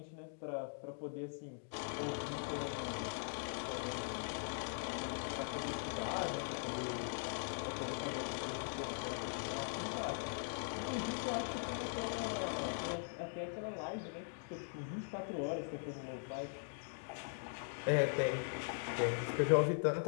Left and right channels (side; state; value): right; silent; digital silence